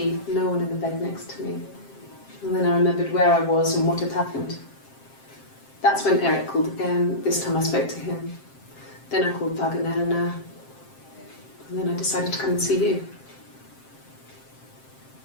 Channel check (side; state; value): right; late; 7.6 ms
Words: no one in the bed next to me. And then I remembered where I was and what had happened. That's when Eric called again. This time I spoke to him. Then I called Doug and Eleanor. And then I decided to come and see you.